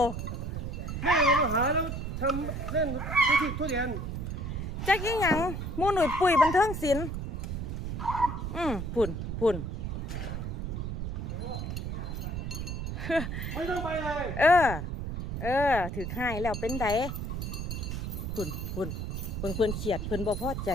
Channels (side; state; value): right; noise; rumble, 4 dB below the sound